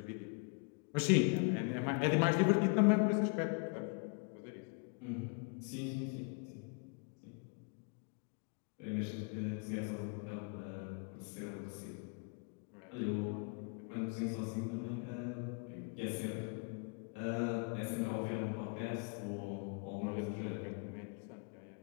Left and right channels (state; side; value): quieter; right; 36.4 dB